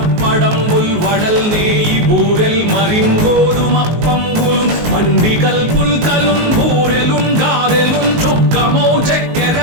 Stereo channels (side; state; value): left; late; 19 ms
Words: వడల్ నేయి బూరెల్ మరింగోదుమప్పంబులు మండి కల్పుల్కలున్ బూరెలున్ గారెలున్ చొక్కమౌ